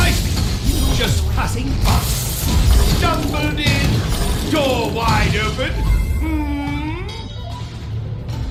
me. Just passing by. Stumbled in, door wide open.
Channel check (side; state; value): both; identical; correlation 1.00